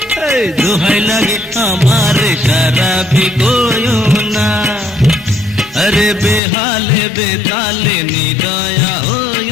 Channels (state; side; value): drops out; right; at 6.4 s